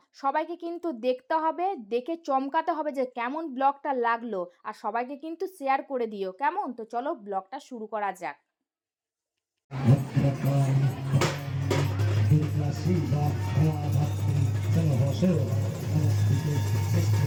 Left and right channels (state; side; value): identical; both; correlation 1.00